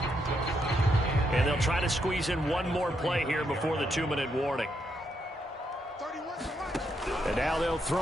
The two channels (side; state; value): both; normal; correlation 0.79